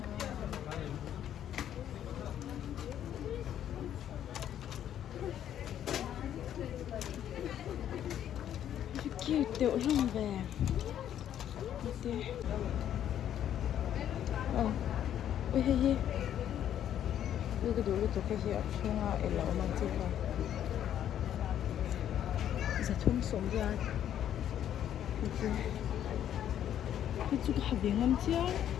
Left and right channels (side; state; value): right; quieter; 10.5 dB